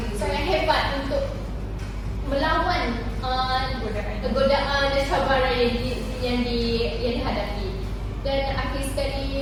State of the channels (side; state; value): both; identical; correlation 1.00